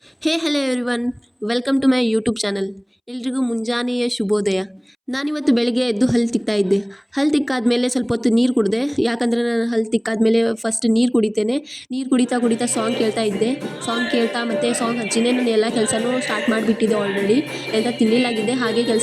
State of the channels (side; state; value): both; identical; correlation 1.00